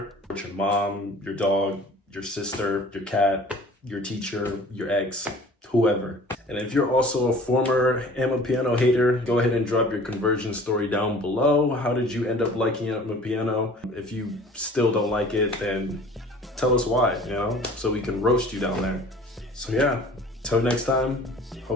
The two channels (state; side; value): normal; both; correlation 0.47